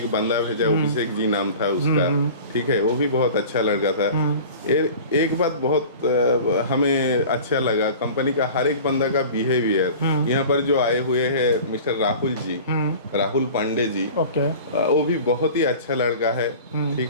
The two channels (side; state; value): both; inverted; correlation -0.40